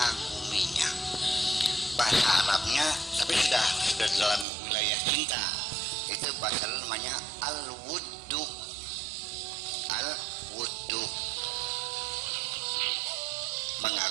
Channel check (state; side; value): drops out; left; at 4.5 s